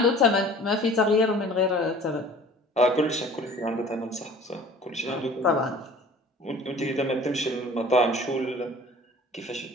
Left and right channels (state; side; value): normal; both; correlation 0.46